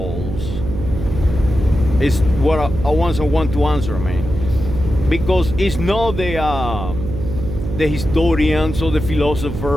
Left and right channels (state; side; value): noise; right; hum, 6 dB below the sound